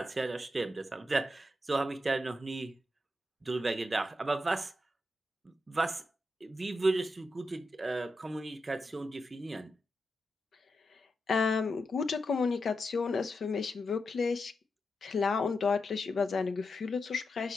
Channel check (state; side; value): normal; both; correlation 0.87